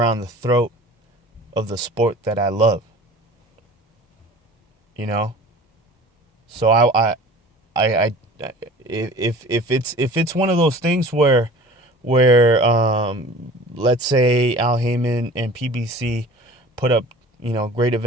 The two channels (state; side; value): normal; both; correlation 0.43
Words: the throat of the sport that I love. So if it's one of those things where let's say Al Haymon and PBC put up great